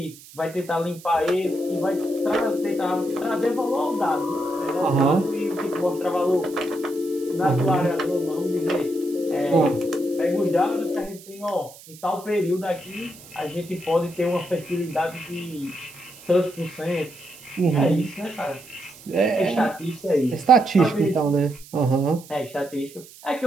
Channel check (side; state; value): right; noise; hiss, 20 dB below the sound